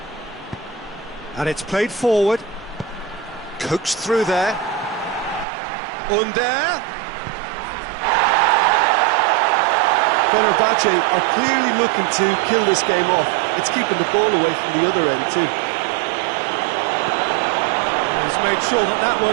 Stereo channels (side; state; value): left; drops out; at 5.5 s